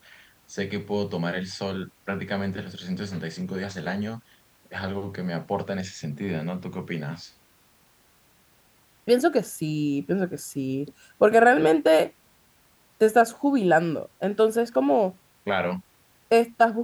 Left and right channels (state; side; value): identical; both; correlation 1.00